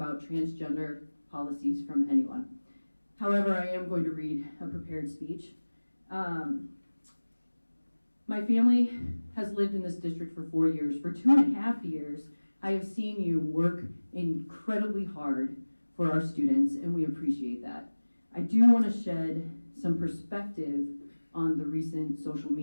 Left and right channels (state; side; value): inverted; both; correlation -1.00